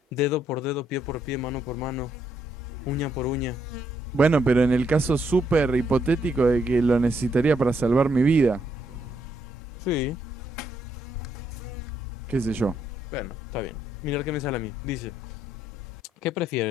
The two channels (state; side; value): normal; both; correlation 0.75